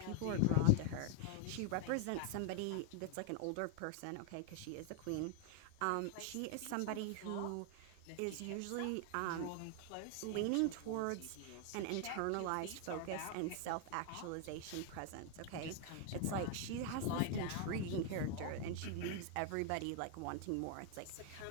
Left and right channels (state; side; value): different; both; correlation 0.00